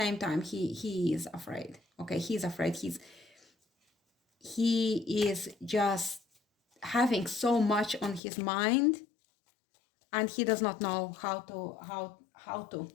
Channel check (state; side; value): drops out; right; at 8.2 s